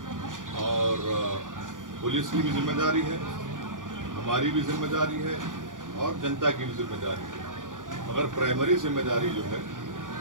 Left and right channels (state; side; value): late; left; 0.88 ms